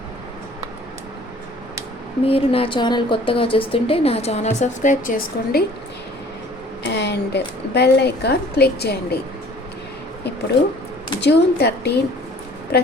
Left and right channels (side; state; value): both; normal; correlation 0.51